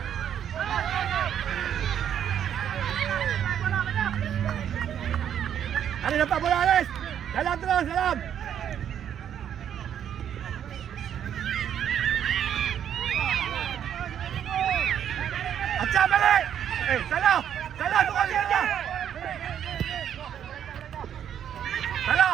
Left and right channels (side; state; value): left; quieter; 9.4 dB